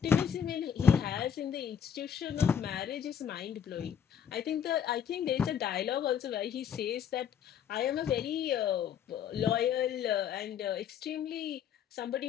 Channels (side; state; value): right; quieter; 8.4 dB